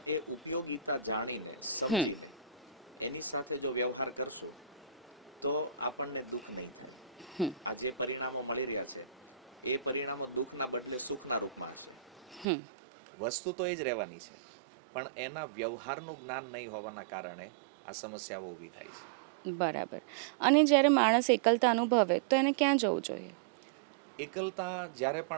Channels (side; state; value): left; drops out; at 12.5 s